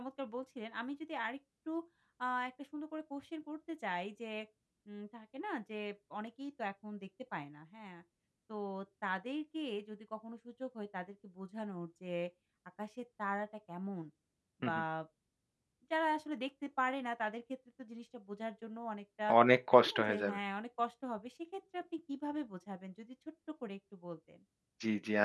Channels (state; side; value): identical; both; correlation 1.00